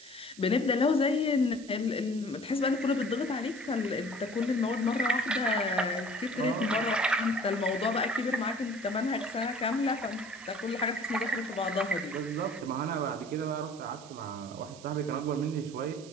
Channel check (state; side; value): noise; right; hiss, 19 dB below the sound